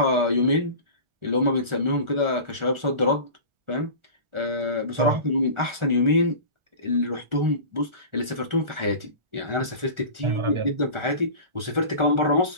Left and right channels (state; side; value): late; left; 1.4 ms